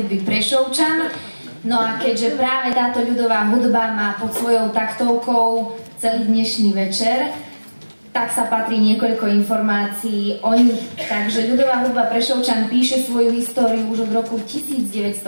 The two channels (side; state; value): both; inverted; correlation -1.00